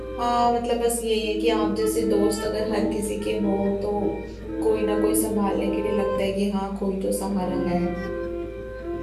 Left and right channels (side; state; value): both; identical; correlation 1.00